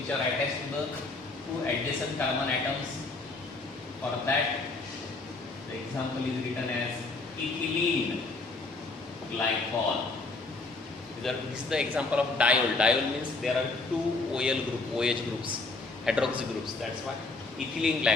are attached to the 2 adjacent carbon atoms. For that, the example is written as ethylene glycol. This is the example of diol. Diol means there are 2 OH groups, hydroxy groups. That's why ethylene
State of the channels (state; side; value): quieter; right; 3.5 dB